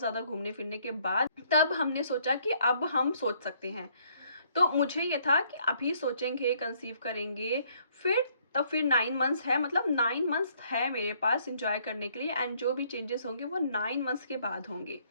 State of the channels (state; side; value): inverted; both; correlation -0.66